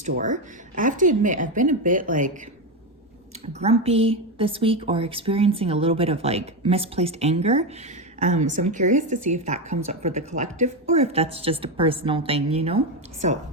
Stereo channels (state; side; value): normal; both; correlation 0.11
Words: I have to admit, I've been a bit grumpy this week or experiencing a little bit of misplaced anger. So I'm curious to see if that comes up for the collective or if that's just a personal thing, you know? So